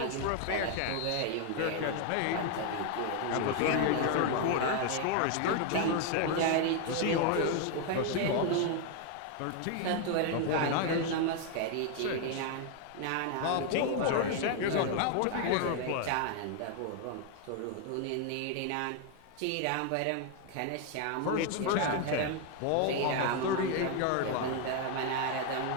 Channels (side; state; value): both; different; correlation 0.01